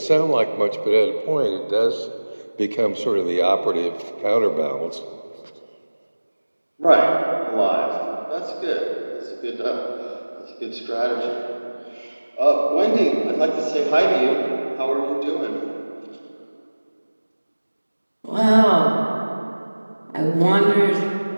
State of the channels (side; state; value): both; inverted; correlation -1.00